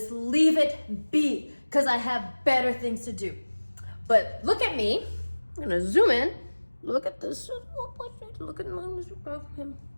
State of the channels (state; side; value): inverted; both; correlation -1.00